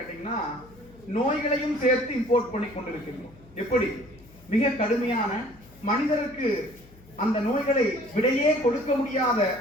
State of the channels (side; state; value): left; noise; hum, 24 dB below the sound